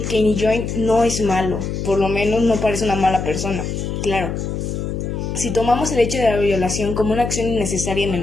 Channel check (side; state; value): left; noise; hum, 4 dB below the sound